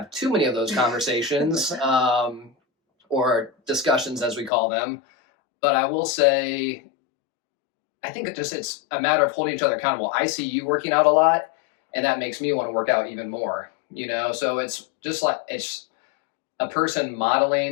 too many of those conversations or discussions, as we call them. But I will say, I think it's a matter of holding each other accountable. I see you working out a lot, and that makes me want to work out even more. So it's just like, it's a person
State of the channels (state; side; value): drops out; right; at 4.5 s